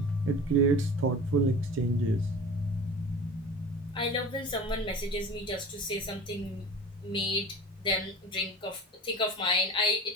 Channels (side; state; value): both; normal; correlation 0.36